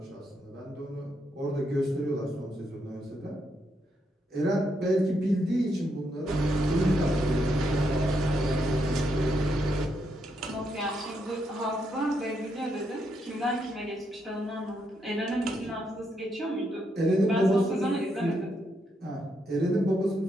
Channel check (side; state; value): both; normal; correlation 0.79